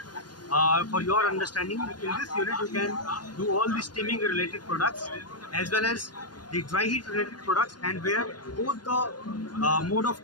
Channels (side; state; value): right; late; 0.70 ms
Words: for your understanding, in this unit you can do all the steaming related products as well as the dry heat related products, and where both the mode